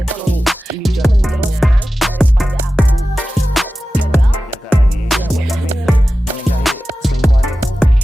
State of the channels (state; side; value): normal; both; correlation 0.94